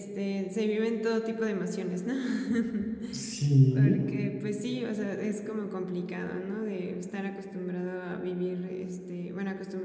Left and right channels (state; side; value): identical; both; correlation 1.00